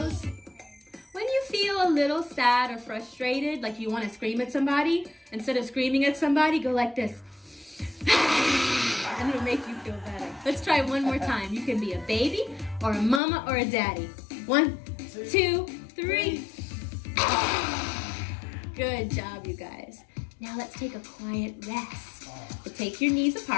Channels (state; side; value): drops out; right; at 13.2 s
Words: When you feel a little sad or frustrated, like you want to scream at somebody, instead of screaming at somebody, go like this. And it'll make you feel better. Let's try one more time. You can be a baby, or a mama, or a daddy. 1, 2, 3. Good job, you guys. Now let's take a quiet rest. So take your knees